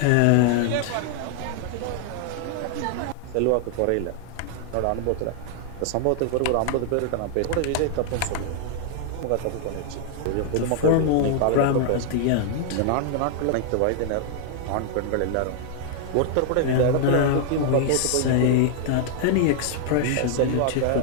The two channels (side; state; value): both; different; correlation -0.01